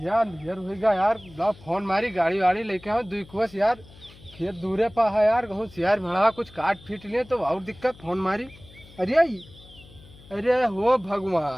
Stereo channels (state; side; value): noise; left; hum, 22 dB below the sound